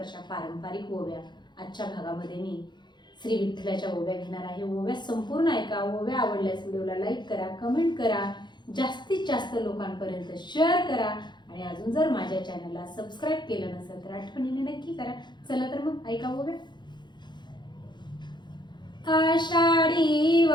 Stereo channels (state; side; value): late; right; 0.22 ms